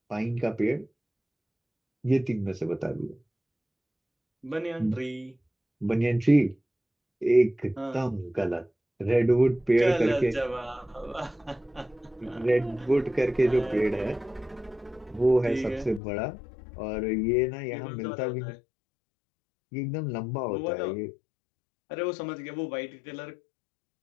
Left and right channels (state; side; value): drops out; right; at 16.0 s